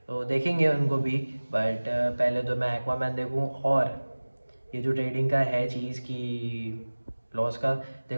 तो देखेंगे उनको भी। बट पहले तो मैं एक्वामैन देखूँ। और ये जो ट्रेडिंग का है चीज़ की लॉस का,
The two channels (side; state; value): both; inverted; correlation -1.00